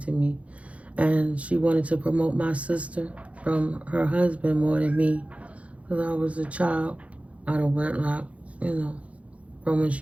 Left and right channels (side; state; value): left; late; 0.064 ms